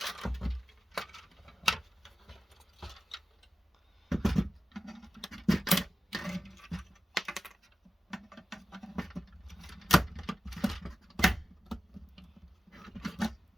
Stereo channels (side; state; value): both; normal; correlation 0.94